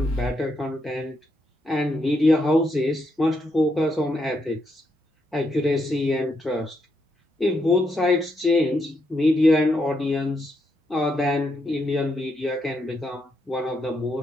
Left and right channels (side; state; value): both; normal; correlation 0.80